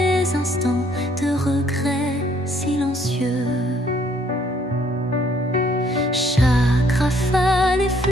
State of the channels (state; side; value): normal; both; correlation 0.64